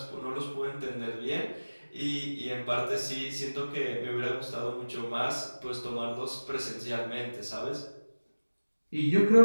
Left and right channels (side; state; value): both; inverted; correlation -1.00